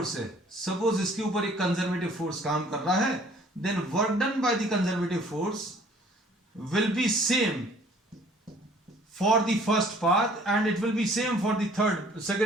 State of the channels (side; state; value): both; normal; correlation 0.55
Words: है, सपोज इसके ऊपर एक कंजर्वेटिव फोर्स काम कर रहा है, then work done by the conservative force will be same for the first path and it will be same for the